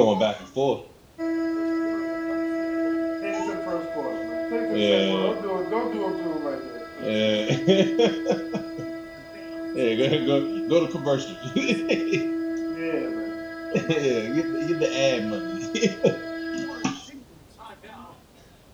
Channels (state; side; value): identical; both; correlation 1.00